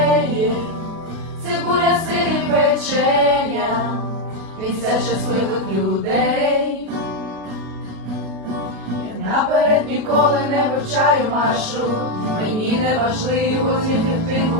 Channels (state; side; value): late; left; 37 ms